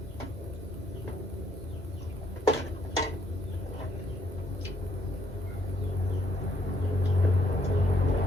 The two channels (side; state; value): both; normal; correlation 0.70